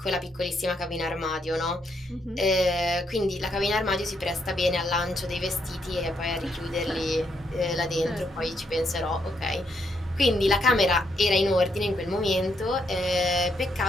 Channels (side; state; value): both; normal; correlation 0.76